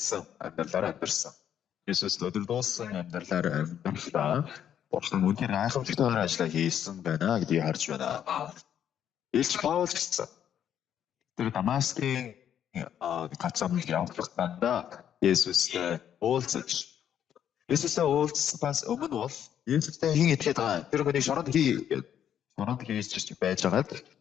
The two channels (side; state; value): right; quieter; 9.6 dB